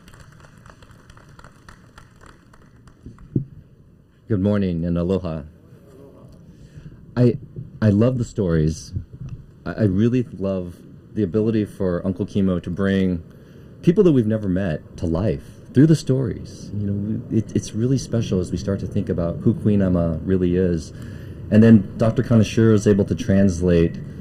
Good morning and aloha. I love the stories. I really love the ability for Uncle Kimo to bring people that we've never met to life through the stories. You know, it's really special as we start to think about who Queen Emma really is. And then Dr. Kaneshiro is able to translate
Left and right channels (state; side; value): identical; both; correlation 1.00